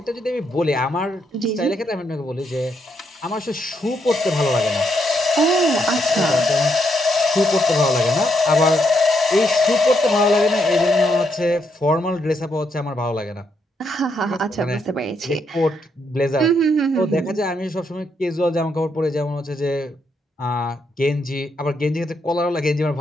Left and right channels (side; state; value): both; normal; correlation 0.77